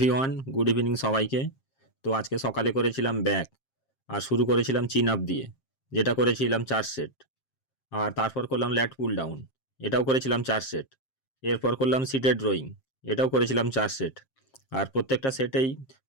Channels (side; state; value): right; late; 7.5 ms